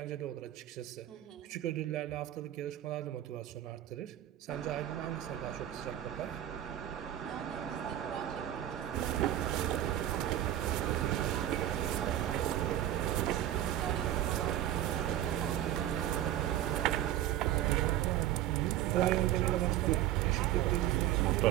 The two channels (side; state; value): left; quieter; 12.5 dB